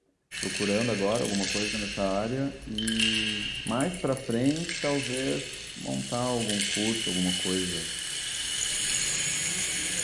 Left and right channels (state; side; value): identical; both; correlation 1.00